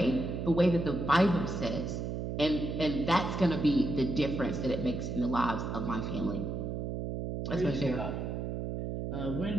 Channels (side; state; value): right; noise; hum, 3 dB below the sound